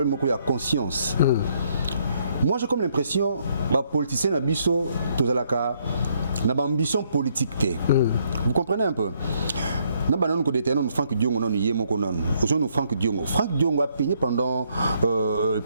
ko ya conscience. Moi j'ai comme l'impression bah politicien na biso tous alaka na ambition politique té. Vous comprenez un peu? Nous avons Franck Diongo, nous Franck Diongo. Franck Diongo a payé pendant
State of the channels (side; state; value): both; inverted; correlation -0.71